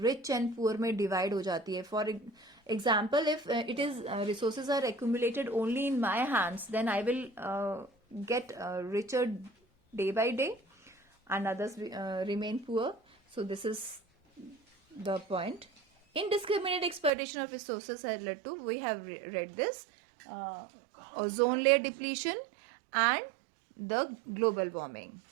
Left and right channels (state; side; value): drops out; left; at 17.1 s